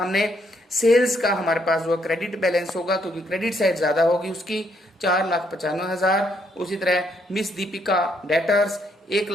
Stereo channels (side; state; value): both; normal; correlation 0.72